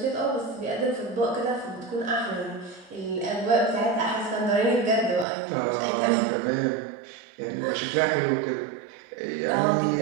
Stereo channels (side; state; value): left; drops out; at 5.2 s